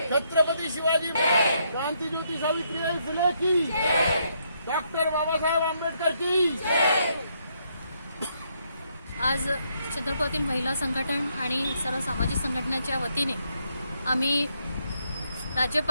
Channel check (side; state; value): both; inverted; correlation -0.75